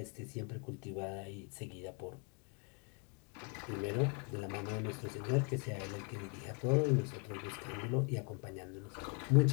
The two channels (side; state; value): right; quieter; 36.9 dB